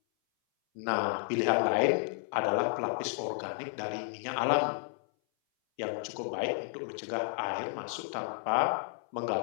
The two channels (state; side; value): silent; right; 56 dB below the other